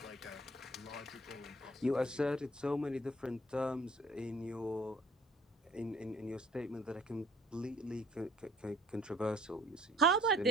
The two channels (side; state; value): both; normal; correlation 0.56